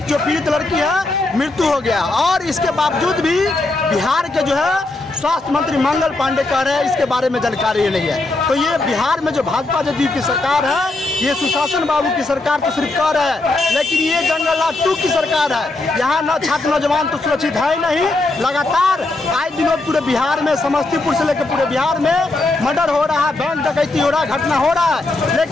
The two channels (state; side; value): quieter; right; 3.0 dB